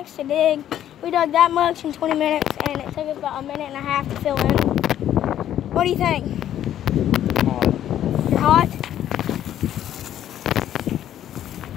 to dig. We dug that much in 20 minutes, and it took us about a minute and a half to fill in. What do you think? You're hot?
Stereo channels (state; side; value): quieter; right; 11.3 dB